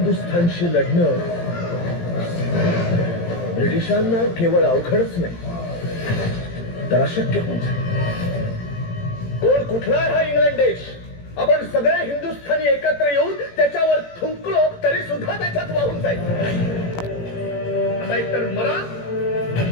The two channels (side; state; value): right; late; 17 ms